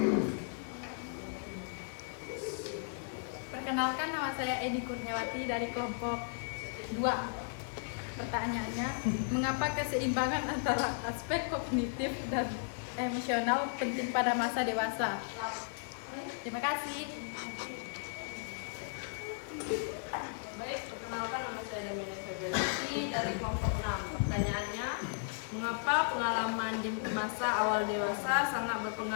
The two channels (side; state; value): right; silent; 54 dB below the other